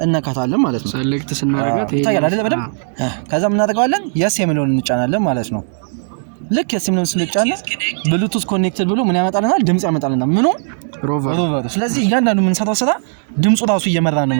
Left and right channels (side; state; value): left; silent; 68 dB below the other